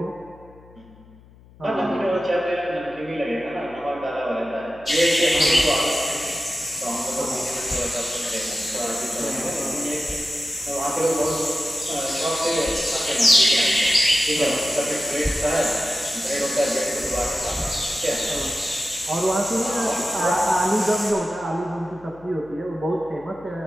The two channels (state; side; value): noise; left; hum, 24 dB below the sound